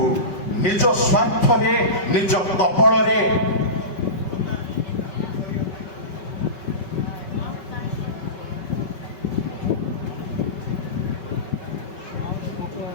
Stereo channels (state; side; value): late; right; 5.2 ms